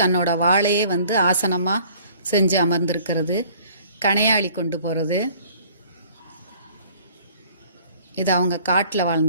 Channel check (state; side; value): inverted; both; correlation -0.54